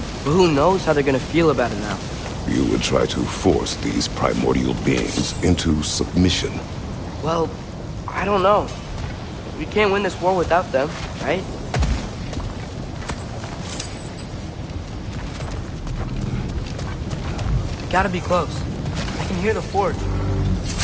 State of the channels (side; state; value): both; identical; correlation 1.00